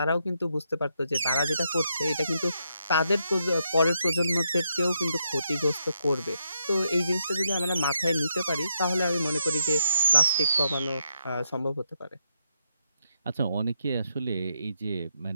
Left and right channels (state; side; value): inverted; both; correlation -0.80